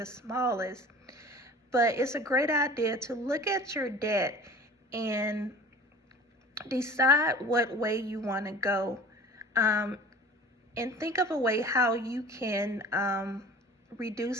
smallest. But it's a great idea to look at your debt and decide what way you want to go, and think of a way how you can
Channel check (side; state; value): both; normal; correlation 0.43